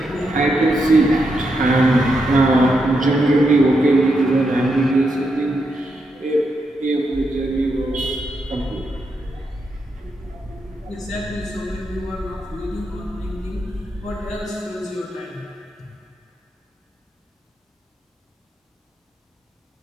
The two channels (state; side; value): normal; both; correlation 0.83